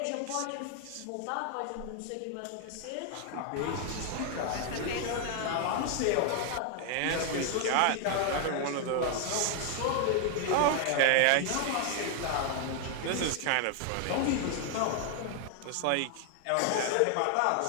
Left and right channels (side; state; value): both; different; correlation 0.00